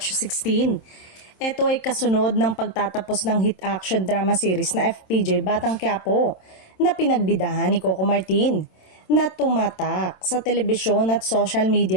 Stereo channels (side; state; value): right; late; 27 ms